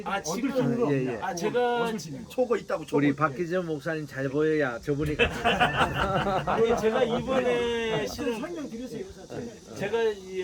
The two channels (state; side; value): identical; both; correlation 1.00